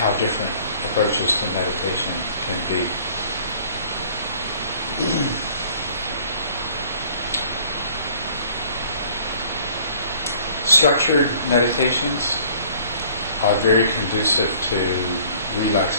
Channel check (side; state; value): both; inverted; correlation -0.54